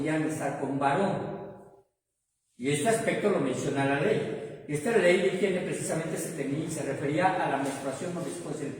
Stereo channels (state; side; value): identical; both; correlation 1.00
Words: estar con varón. Y este aspecto lo menciona la ley. Y esta ley de higiene precisamente se refería a la menstruación o después del